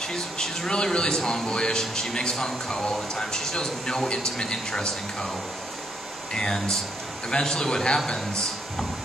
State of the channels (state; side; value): normal; both; correlation 0.74